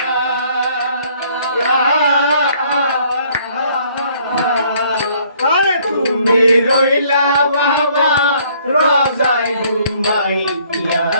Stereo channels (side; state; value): both; inverted; correlation -0.62